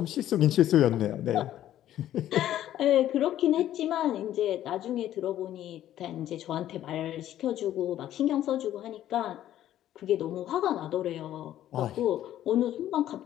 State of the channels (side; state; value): right; quieter; 12.3 dB